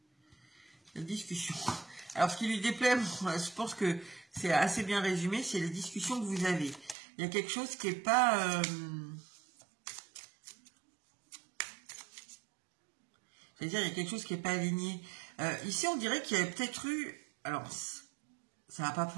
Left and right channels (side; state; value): left; drops out; at 7.0 s